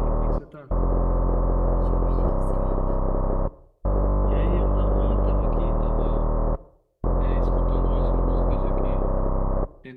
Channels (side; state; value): both; identical; correlation 1.00